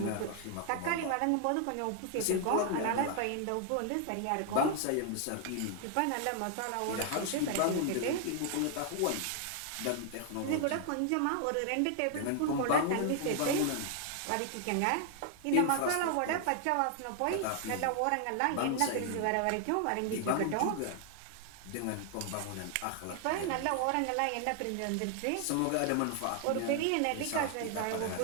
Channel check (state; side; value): different; both; correlation 0.00